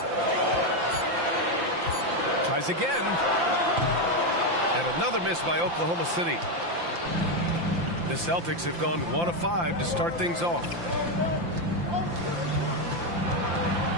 Tries again. And another miss by Oklahoma City. The Celtics have gone 1 of 5 to start things off.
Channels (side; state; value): left; late; 5.8 ms